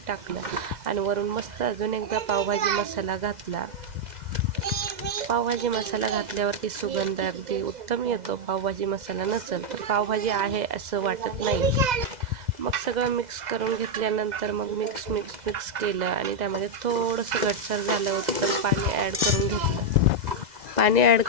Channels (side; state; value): left; late; 2.0 ms